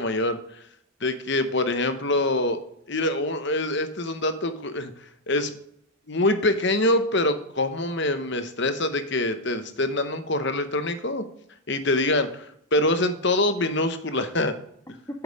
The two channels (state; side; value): normal; both; correlation -0.02